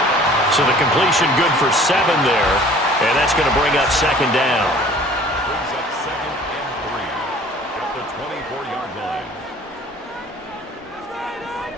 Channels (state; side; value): normal; both; correlation 0.50